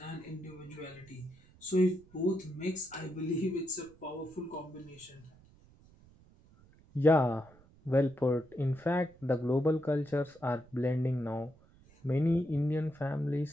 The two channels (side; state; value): right; noise; rumble, 26 dB below the sound